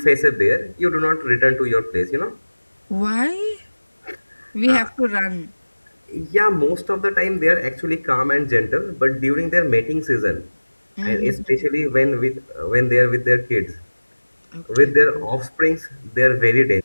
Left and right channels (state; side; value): inverted; both; correlation -1.00